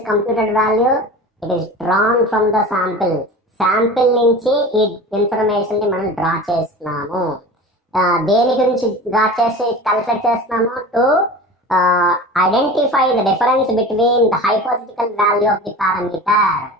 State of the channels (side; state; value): both; normal; correlation 0.35